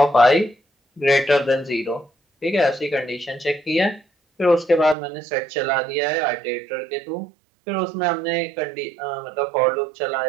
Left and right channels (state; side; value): drops out; left; at 5.0 s